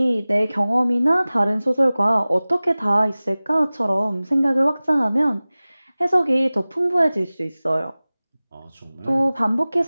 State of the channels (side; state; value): both; inverted; correlation -0.98